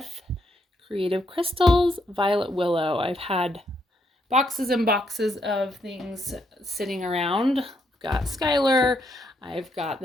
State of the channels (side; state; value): both; normal; correlation 0.76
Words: Creative Crystals, Violet Willow. I've had boxes and boxes of things sitting around. I've got Skylar. I've got